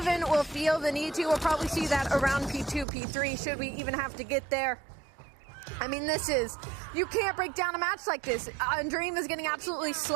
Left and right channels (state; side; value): drops out; left; at 2.9 s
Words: will feel the need to. We'll probably see that around P2, P3, should we even have to get there. I mean, you can't break down a match like this. Undream is getting absolutely